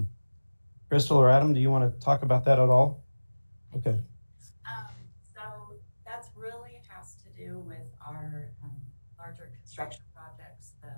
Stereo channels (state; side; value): inverted; both; correlation -1.00